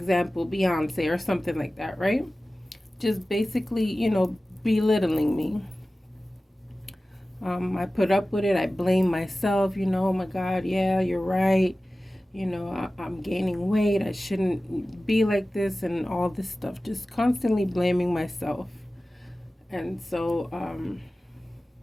Beyonce or something like that, right? Just basically, belittling me. I put up with it. I blame myself, oh my God, yeah, you're right. I'm gaining weight. I shouldn't be like this and all this stuff. Just constantly blaming myself. And so,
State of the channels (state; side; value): normal; both; correlation 0.96